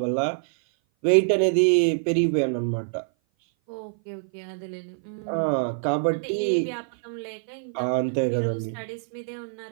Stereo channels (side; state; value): left; silent; 57 dB below the other